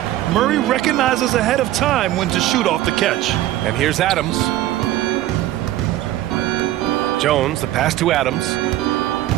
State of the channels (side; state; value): left; quieter; 14.5 dB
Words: Murray recognizes ahead of time when to shoot off the catch. And here's Adams. Jones, the pass to Adams.